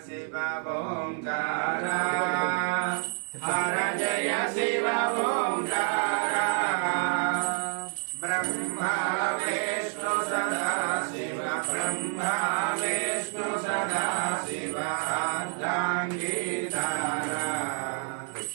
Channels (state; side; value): silent; left; 59 dB below the other